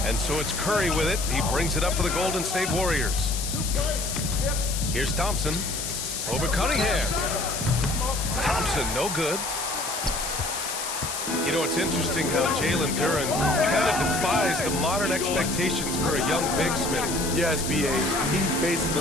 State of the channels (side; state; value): left; noise; hiss, 5 dB below the sound